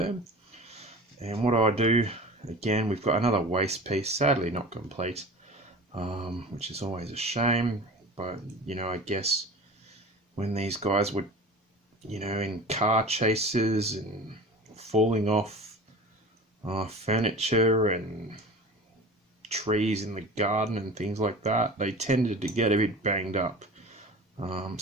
And what I do, again, we've got another waist piece, sadly not complete, which is always a shame. But you know, I guess when these guys were, you know, in car chases and falling off furniture and trees in the garden and things like that, they tended to get a bit banged up.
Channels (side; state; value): both; normal; correlation 0.37